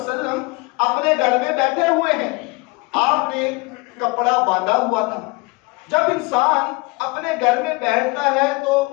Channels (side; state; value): right; quieter; 26.3 dB